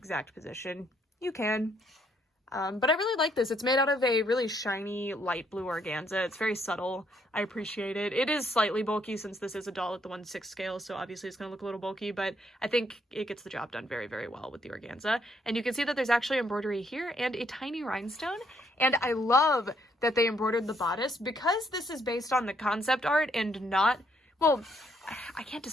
position, you can. But I really like this. It's made out of a really shiny light blue organza. It's very subtle. I appreciate it. It is slightly bulky since this is a doll at the 1/6 scale, so obviously it's going to look a little bulky, but I think it gets the job done very, very well with the organza. And you can see that there's actually embroidery here and a tiny rhinestone. And I love that they embroidered the bodice because this is based on the concept art and not, well, I can't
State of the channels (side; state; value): both; normal; correlation 0.71